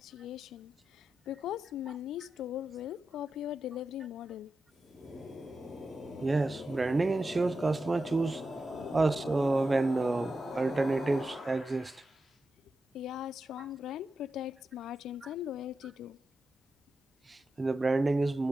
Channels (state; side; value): normal; both; correlation 0.90